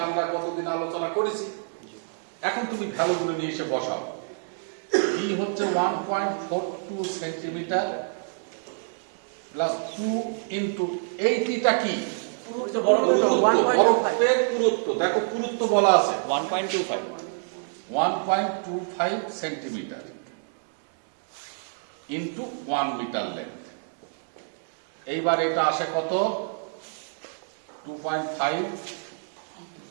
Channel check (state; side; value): silent; left; 60 dB below the other